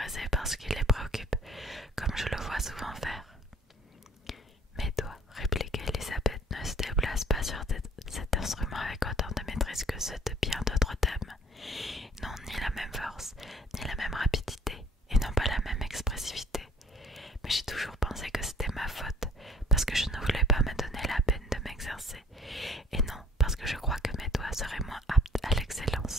par ce qui les préoccupe, comme je le vois souvent faire. Mes doigts, répliqua Elisabeth, ne se déplacent pas sur cet instrument avec autant de maîtrise que ceux de bien d'autres dames. Ils n'ont ni la même force, ni la même rapidité, et n'ont pas la même expressivité. Mais j'ai toujours pensé que c'était ma faute, parce que je ne voulais pas me donner la peine de m'exercer, et non parce que je crois que mes doigts seraient moins aptes à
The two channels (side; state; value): both; normal; correlation 0.54